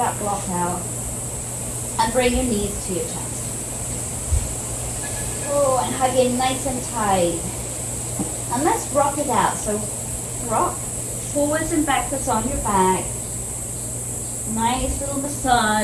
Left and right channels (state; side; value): identical; both; correlation 1.00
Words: block out, and bring your knees to your chest. Oh, and hug in nice and tight. And let's rock it out. So rock forwards and backwards on your back. Nice little